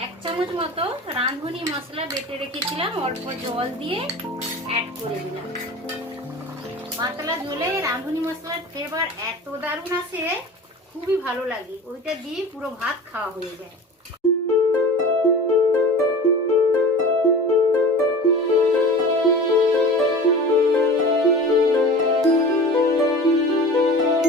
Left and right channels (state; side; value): normal; both; correlation 0.36